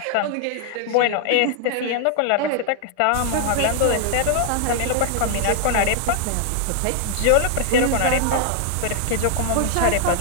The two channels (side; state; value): both; different; correlation 0.00